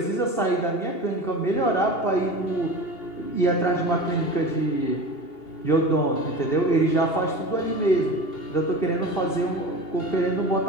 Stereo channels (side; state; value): right; late; 2.8 ms